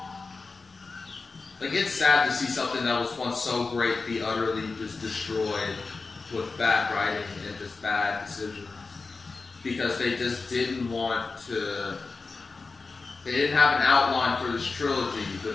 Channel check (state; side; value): quieter; right; 4.1 dB